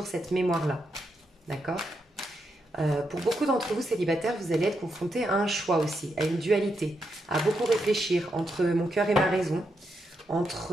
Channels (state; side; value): normal; both; correlation 0.82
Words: cette mémoire-là. D'accord? Pour beaucoup d'entre vous célibataires, vous allez être confrontés à un choix aussi, à une dualité, à beaucoup réfléchir entre mon cœur et ma raison,